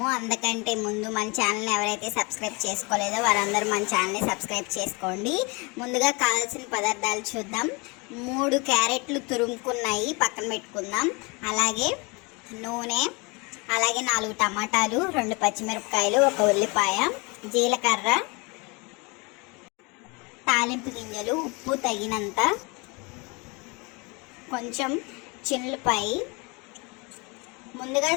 అందుకంటే ముందు మన ఛానల్ని ఎవరైతే సబ్స్క్రైబ్ చేసుకోలేదో వారందరూ మన ఛానల్ని సబ్స్క్రైబ్ చేసుకోండి. ముందుగా కావాల్సిన పదార్థాలు చూద్దాం. 3 క్యారెట్లు తురుముకున్నాయి పక్కన పెట్టుకుందాం. అలాగే నూనె, అలాగే 4 టమాటాలు, 2 పచ్చిమిరపకాయలు, 1 ఉల్లిపాయ, జీలకర్ర, తాలింపు గింజలు, ఉప్పు తగినంత, కొంచెం చిన్నులపాయి. ముందుగా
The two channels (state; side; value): quieter; right; 28.5 dB